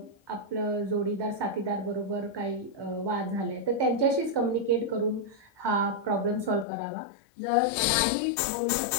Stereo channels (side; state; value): right; drops out; at 6.7 s